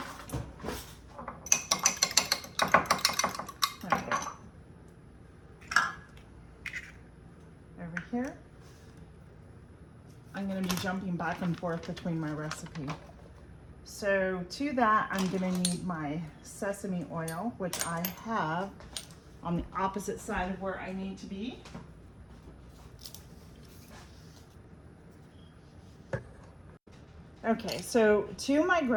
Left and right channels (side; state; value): both; identical; correlation 1.00